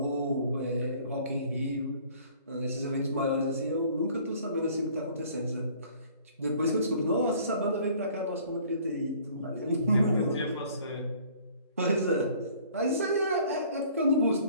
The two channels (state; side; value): inverted; both; correlation -0.54